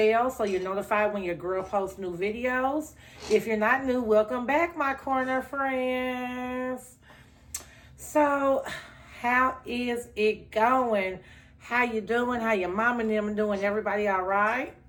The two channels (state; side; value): identical; both; correlation 1.00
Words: so you're notified when your girl posts new videos. If you're not new, welcome back, my corner friends. So, how is it going? How you doing? How your mom and them doing? Everybody all right?